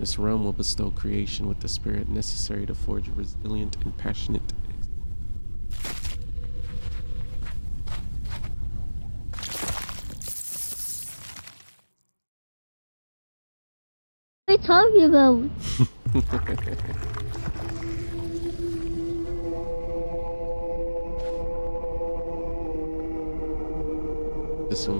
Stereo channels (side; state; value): both; inverted; correlation -1.00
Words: realm will bestow creation with the spirit necessary to forge a resilient and passionate What are you talking about? This